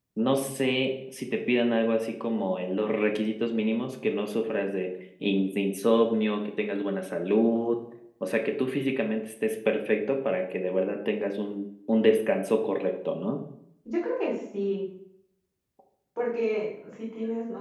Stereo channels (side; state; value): both; identical; correlation 1.00